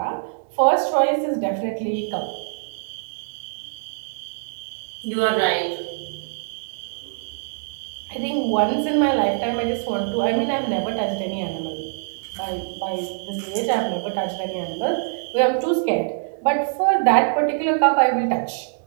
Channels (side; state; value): left; silent; digital silence